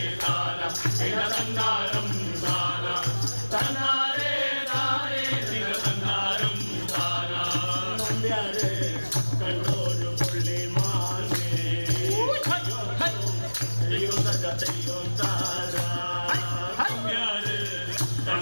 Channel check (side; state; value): both; inverted; correlation -1.00